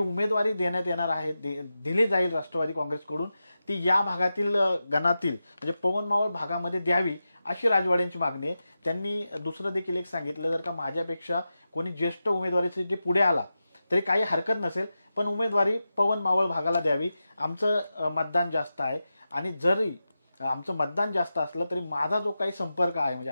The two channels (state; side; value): inverted; both; correlation -0.91